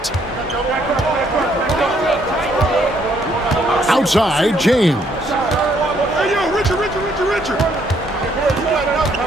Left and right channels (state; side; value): normal; both; correlation 0.69